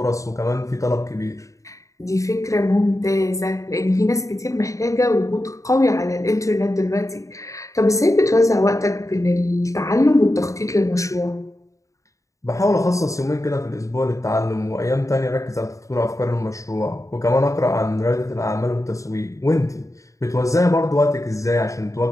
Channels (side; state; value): right; late; 0.16 ms